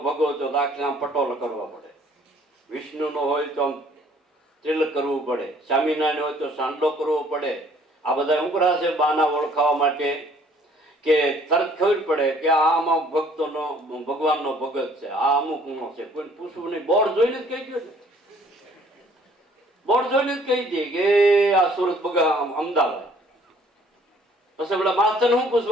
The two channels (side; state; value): both; normal; correlation 0.58